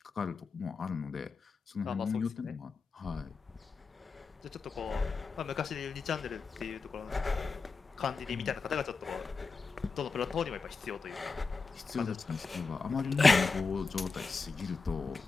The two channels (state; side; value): quieter; right; 4.5 dB